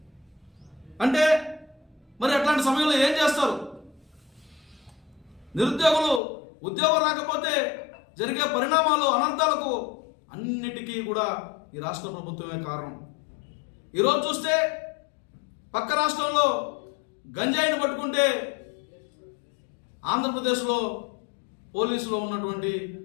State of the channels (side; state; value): right; drops out; at 6.2 s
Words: అంటే మరి అట్లాంటి సమయంలో ఏం చేస్తారు? నిరుద్యోగులు ఉద్యోగం రాకపోతే జరిగే పరిణామాలు, అనర్థాలకు అన్నిటికీ కూడా ఈ రాష్ట్ర ప్రభుత్వమే కారణం. ఈరోజు చూస్తే పక్క రాష్ట్రంలో గంజాయిని పట్టుకుంటే ఆంధ్రప్రదేశ్లో పోలీసులో ఉన్నటువంటి